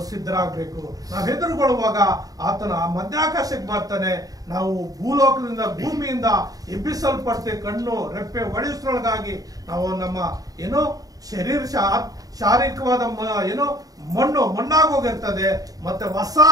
ಸಿದ್ಧರಾಗಬೇಕು. ನಾವು ಎದುರುಗೊಳ್ಳುವಾಗ ಆತನ ಮಧ್ಯಾಕಾಶಕ್ಕೆ ಬರ್ತಾನೆ. ನಾವು ಭೂಮಿಯಿಂದ ಎಬ್ಬಿಸಲ್ಪಡ್ತೇವೆ. ಕಣ್ಣು ರೆಪ್ಪೆ ಒಡೆಸೊಳಗಾಗಿ ನಾವು ನಮ್ಮ ಶಾರೀರಿಕವಾದ ಮಣ್ಣಾಗೋಗಿರ್ತದೆ. ಮತ್ತೆ ಹೊಸ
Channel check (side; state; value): left; late; 0.18 ms